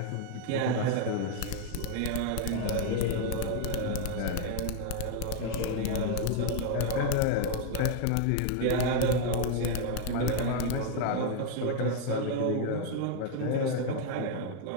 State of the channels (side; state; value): both; different; correlation 0.01